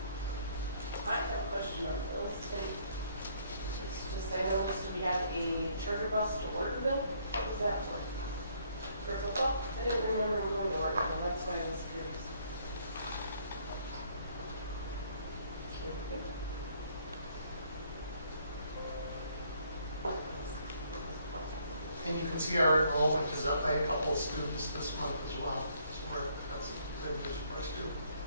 I have a question on bills, and it's just, I noticed we had a charter bus to order bill. What was that for? For football? I didn't remember going to order bill, that's why I was curious. And you can see our enrollment is up by a couple of students this month as well. So that's good news for us too.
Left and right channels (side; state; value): both; inverted; correlation -0.66